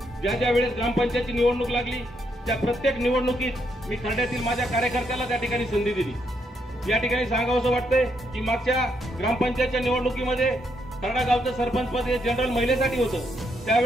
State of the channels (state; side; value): normal; both; correlation 0.77